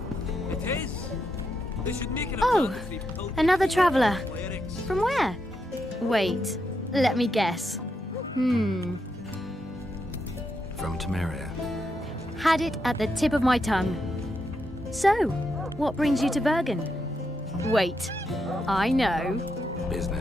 It is. They should make it a Oh, mandatory pilgrimage another for traveller. clerics. From where? Wait, let me guess. From Temeria. Had it at the tip of my tongue. So, what brings you to Bergen? Wait, I know.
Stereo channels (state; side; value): normal; both; correlation 0.82